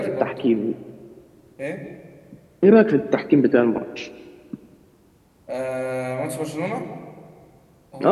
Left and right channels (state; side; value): identical; both; correlation 1.00